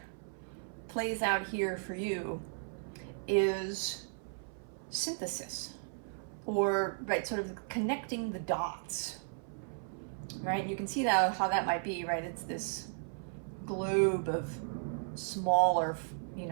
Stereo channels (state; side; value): silent; left; 54 dB below the other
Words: plays out here for you, is synthesis, or sort of connecting the dots, right? You can see how that might be, right? It's this globe of smaller,